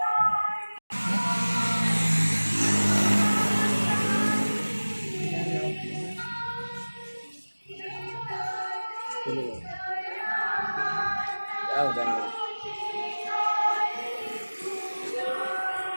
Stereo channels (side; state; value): both; inverted; correlation -1.00